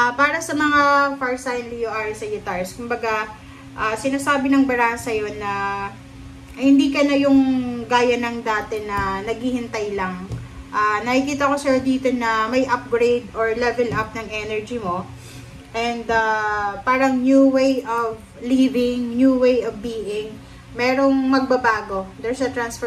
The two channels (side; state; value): both; identical; correlation 1.00